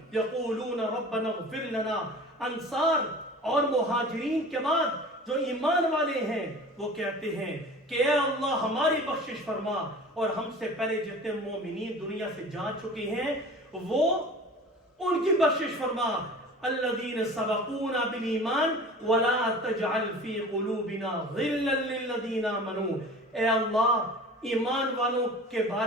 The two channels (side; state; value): both; normal; correlation 0.40